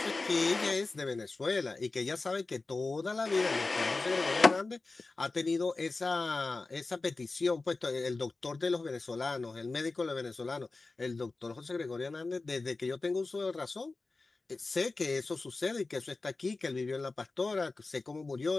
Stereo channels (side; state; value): right; quieter; 3.6 dB